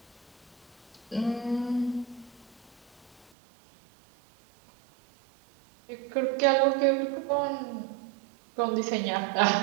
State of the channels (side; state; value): left; drops out; at 3.3 s